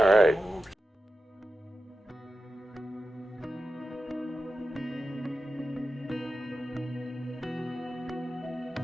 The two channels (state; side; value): normal; both; correlation 0.91